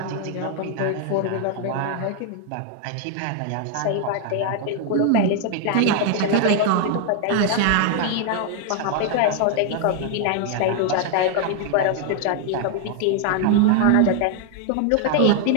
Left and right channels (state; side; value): different; both; correlation 0.00